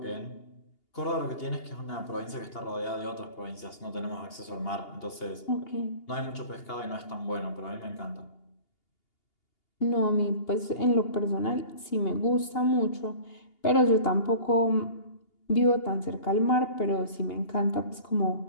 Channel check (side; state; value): right; late; 2.8 ms